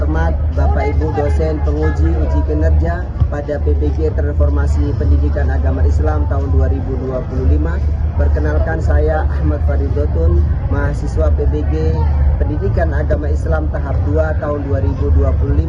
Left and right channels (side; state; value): both; identical; correlation 1.00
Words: Bapak Ibu dosen penguji uji kinerja pada PBG Transformasi Pendidikan Agama Islam tahun 2025. Perkenalkan, saya Ahmad Faridotun, mahasiswa PBG Pendidikan Agama Islam tahap 2 tahun 2025